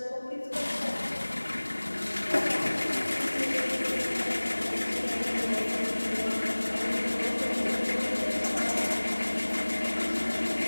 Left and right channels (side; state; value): both; inverted; correlation -1.00